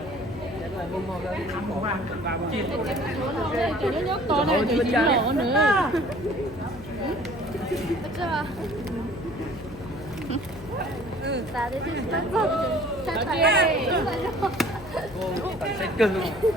mồm mồm lên thăm một ba Cho nó nhốt to này thì chỉ nổ nữa. sẽ cưng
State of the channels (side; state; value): left; noise; hum, 17 dB below the sound